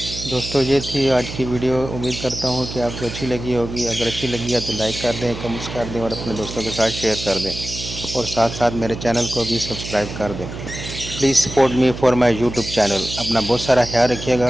दोस्तों ये थी आज की वीडियो। उम्मीद करता हूँ कि आपको अच्छी लगी होगी। अगर अच्छी लगी है तो लाइक कर दें, कमेंट्स कर दें और अपने दोस्तों के साथ शेयर कर दें, और साथ साथ मेरे चैनल को भी सब्सक्राइब कर दें। Please support me for my YouTube channel. अपना बहुत सारा ख्याल रखिएगा।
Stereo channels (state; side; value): noise; right; hum, 9 dB below the sound